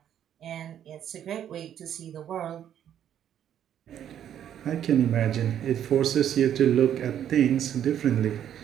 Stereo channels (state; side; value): quieter; left; 10.1 dB